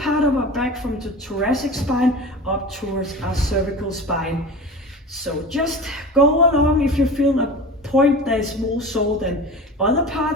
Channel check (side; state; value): both; normal; correlation 0.33